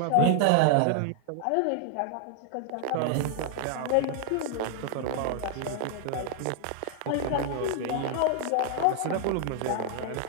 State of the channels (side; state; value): both; different; correlation 0.00